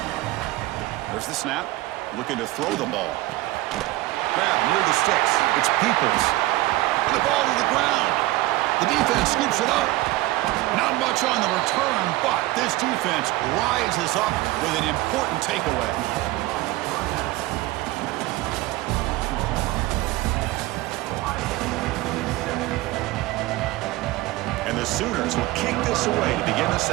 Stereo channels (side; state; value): left; quieter; 18.4 dB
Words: There's the snap. Looking to throw the ball. Grab near the sticks. It's Peoples. And the ball to the ground. The defense scoops it up. Not much on the return, but this defense rises up with an important takeaway. And the Sooners will kick this away to begin the